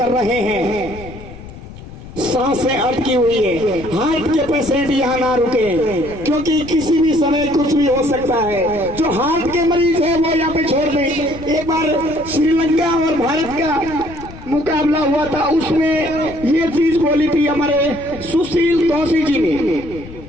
रहे हैं। सांसें अटकी हुई है, हार्ट के पेशेंट यहाँ ना रुके, क्योंकि किसी भी समय कुछ भी हो सकता है। जो हार्ट के मरीज है वो यहाँ पे छोड़ दें। एक बार श्रीलंका और भारत का मुकाबला हुआ था, उसमें ये चीज बोली थी हमारे सुशील दोषी जी ने।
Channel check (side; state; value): left; noise; rumble, 15 dB below the sound